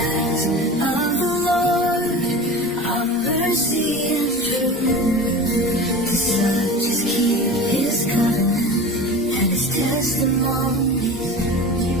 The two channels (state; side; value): normal; both; correlation 0.33